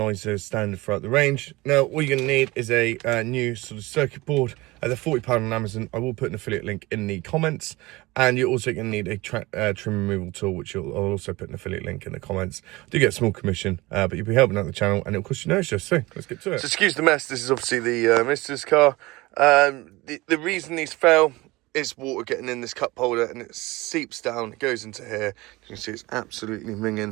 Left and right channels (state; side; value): quieter; left; 21.3 dB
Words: is standard throughout the range. Now, all you're going to need is a new sort of circuit board. They're £40 on Amazon. I will put an affiliate link in the comments, and you're also going to need a trim removal tool, which I'll also put an affiliate link in the comments. Do get a small commission, but you'll be helping out the channel, and it'll cost you no extra. So let's get to it. So excuse the mess. This is obviously the Mister's car. The reason these fell is water getting in this cup holder, and it seeps down, it goes into here. You can see it's absolutely